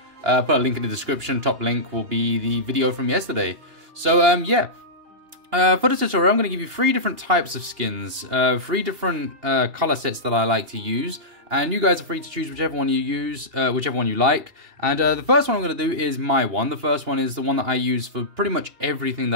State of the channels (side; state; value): left; late; 2.8 ms